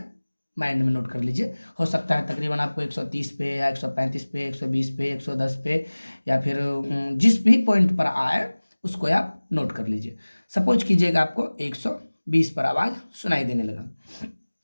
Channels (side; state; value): both; inverted; correlation -1.00